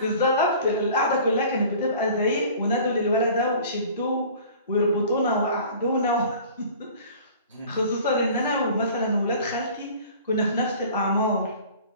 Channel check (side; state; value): both; inverted; correlation -0.46